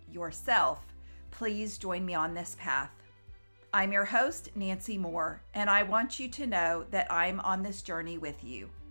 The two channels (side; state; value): both; inverted; correlation -1.00